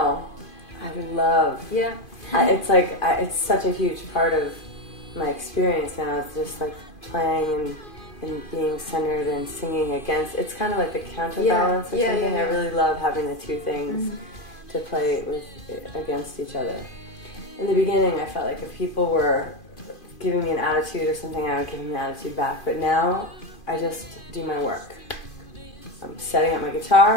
I love. Yeah. It's like, it's such a huge part of my experience now. It's just like playing and being centered and singing against. It's kind of like the counterbalance or something. I really love having the two things to play with against each other. In the beginning, I felt like if people were giving me an attitude or something, I would give them an attitude back. But now, I just do my work. I'm setting up my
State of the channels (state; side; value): late; right; 2.5 ms